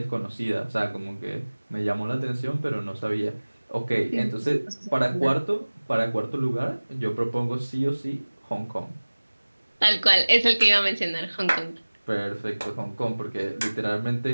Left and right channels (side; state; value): both; inverted; correlation -1.00